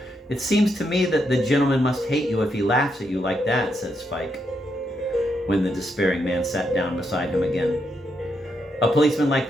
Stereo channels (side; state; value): both; normal; correlation 0.80